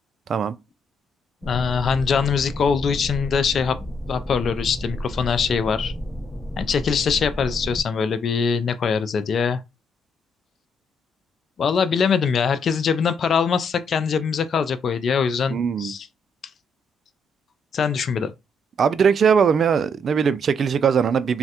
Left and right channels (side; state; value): both; normal; correlation 0.74